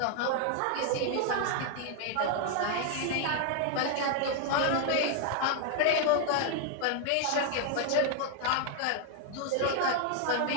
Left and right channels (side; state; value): both; different; correlation 0.00